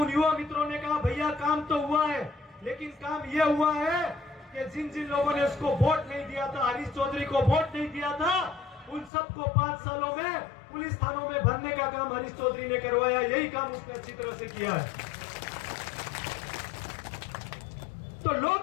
युवा मित्रों ने कहा भैया काम तो हुआ है, लेकिन काम यह हुआ है कि जिन जिन लोगों ने उसको वोट नहीं दिया था, हरीश चौधरी को वोट नहीं दिया था, उन सबको 5 सालों में पुलिस थानों में भरने का काम हरीश चौधरी ने करवाया। यही काम उसने अच्छी तरह से किया है। तो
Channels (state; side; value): drops out; right; at 9.1 s